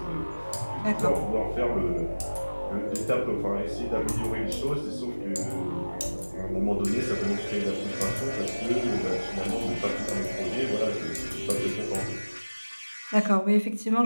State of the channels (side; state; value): both; inverted; correlation -1.00